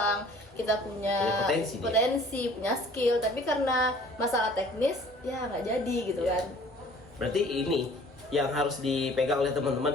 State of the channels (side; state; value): both; normal; correlation 0.52